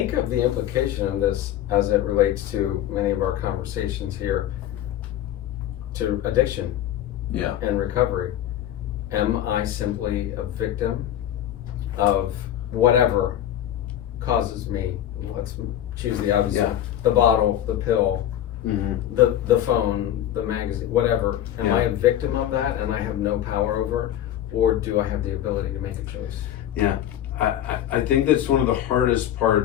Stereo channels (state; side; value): quieter; right; 11.6 dB